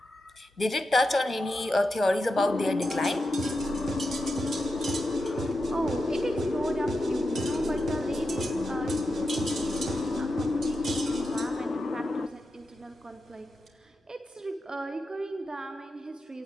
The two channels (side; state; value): both; normal; correlation 0.89